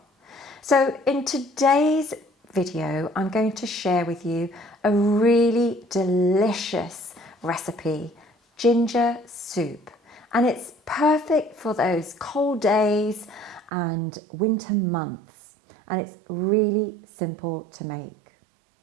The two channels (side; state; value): left; drops out; at 13.7 s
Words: So in today's video, I'm going to share with you a really delicious recipe, ginger soup. And it's perfect for those cold days and winter months. And it's really simple to make.